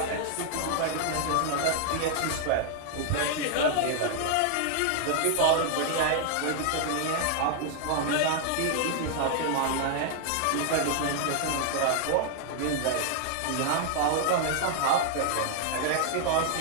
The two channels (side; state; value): both; different; correlation 0.00